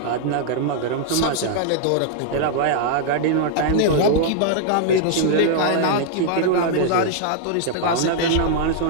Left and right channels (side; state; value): both; different; correlation -0.01